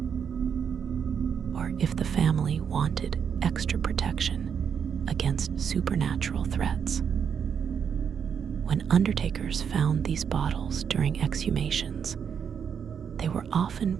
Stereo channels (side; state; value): left; quieter; 7.3 dB